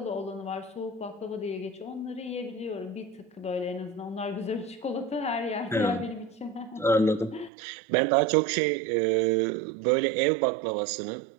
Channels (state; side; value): drops out; left; at 7.5 s